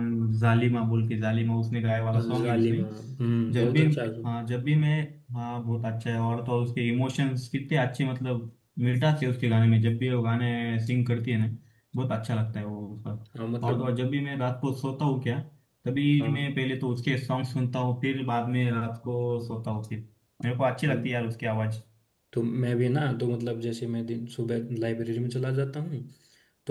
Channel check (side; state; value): both; identical; correlation 1.00